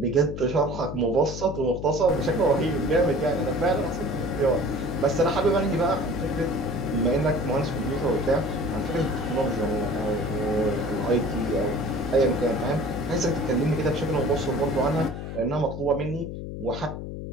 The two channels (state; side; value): noise; left; hum, 7 dB below the sound